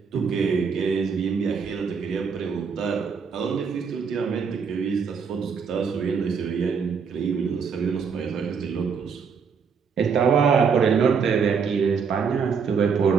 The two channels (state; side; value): quieter; left; 6.1 dB